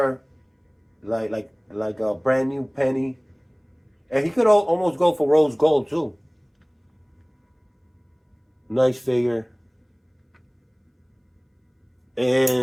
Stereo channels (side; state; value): both; identical; correlation 1.00